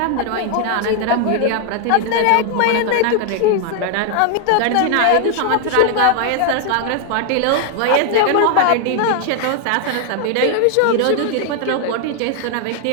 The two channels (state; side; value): different; both; correlation 0.00